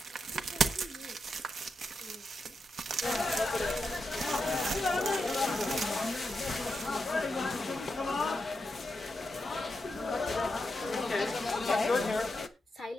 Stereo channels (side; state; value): both; normal; correlation 0.85